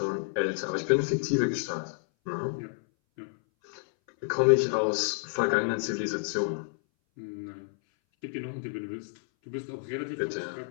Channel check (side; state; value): right; silent; 58 dB below the other